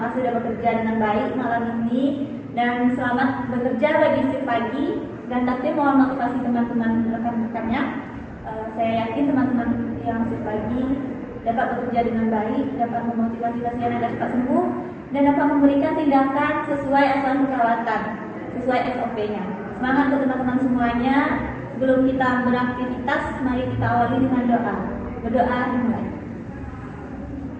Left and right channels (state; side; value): identical; both; correlation 1.00